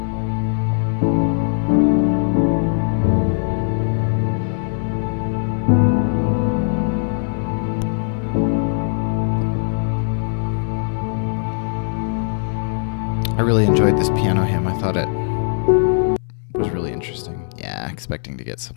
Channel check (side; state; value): right; silent; digital silence